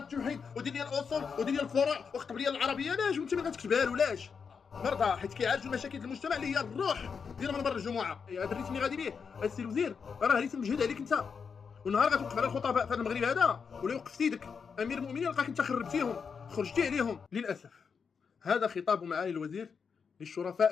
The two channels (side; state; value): right; quieter; 6.0 dB